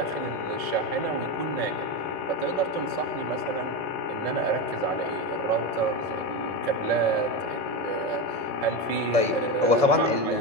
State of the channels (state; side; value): late; left; 1.7 ms